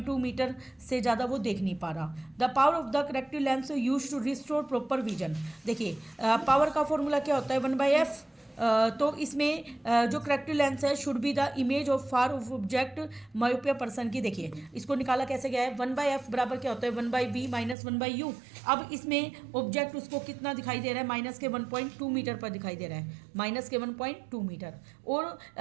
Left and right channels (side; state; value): left; drops out; at 17.8 s